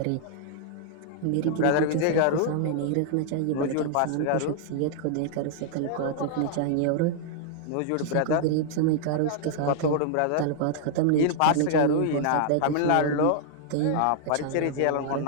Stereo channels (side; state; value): both; different; correlation -0.01